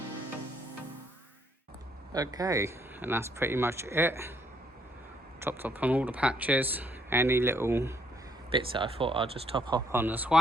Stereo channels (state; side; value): normal; both; correlation 0.70